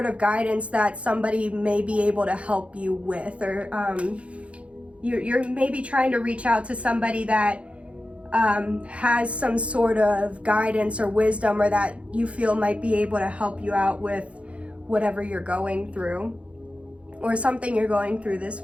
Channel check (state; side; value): late; left; 0.062 ms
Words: of guidance that somebody may be able to help you with, or you're maybe trying to reach out to somebody that has some sort of guidance or wisdom, or that you feel might be able to help you out with whatever you're going through or something you're going through this